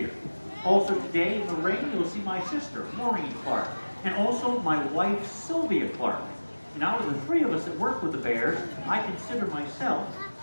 Also today in the ring, you'll see my sister, Maureen Clark, and also my wife, Sylvia Clark. And out of the 3 of us that work with the Bears, I consider myself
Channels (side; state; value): both; inverted; correlation -1.00